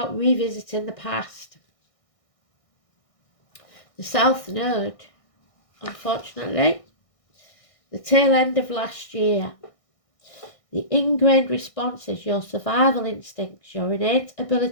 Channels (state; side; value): late; right; 1.6 ms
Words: revisiting the past. The South Node, unfortunately, the tail end of last year. The ingrained responses, your survival instincts, your innate